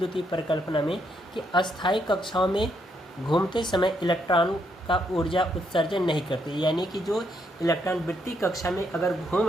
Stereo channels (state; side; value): normal; both; correlation 0.76